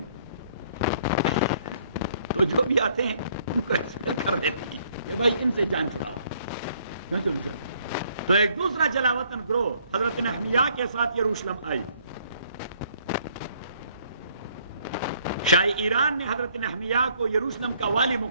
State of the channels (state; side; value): inverted; both; correlation -0.64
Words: تو جو بھی آتے ہیں ان کو ایکسپیل کر دیتے ہیں کہ بھائی ان سے جان چھڑاؤ. تو ایک دوسرا جلاوطن گروہ حضرت نحمیہ کے ساتھ یروشلم آئی. شاہ ایران نے حضرت نحمیہ کو یروشلم کا والی